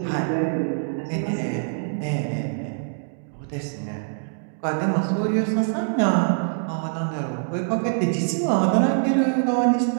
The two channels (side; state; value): left; silent; digital silence